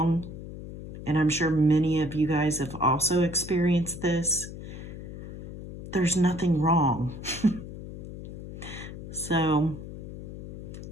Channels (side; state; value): left; noise; hum, 11 dB below the sound